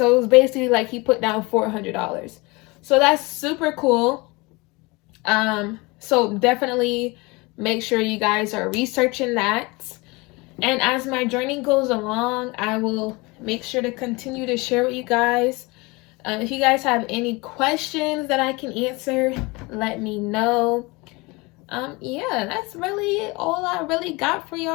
it was basically like he put down $400. So that's super cool. So definitely make sure you guys are researching that. And as my journey goes along, I will make sure to continue to share with you guys. If you guys have any questions that I can answer, let me know. Yeah, that's really all I really got for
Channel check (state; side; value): quieter; right; 25.0 dB